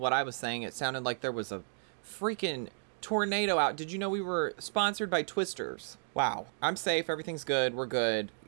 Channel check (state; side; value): silent; left; digital silence